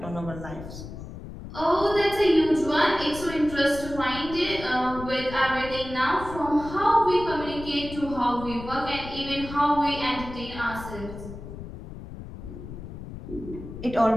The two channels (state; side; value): noise; left; rumble, 12 dB below the sound